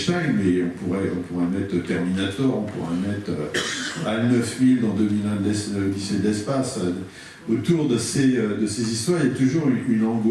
mais on pourrait mettre Terminator, on pourrait mettre HAL 9000 dans 2001 l'Odyssée de l'espace. Autour de ces histoires, il y a toujours une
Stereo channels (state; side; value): identical; both; correlation 1.00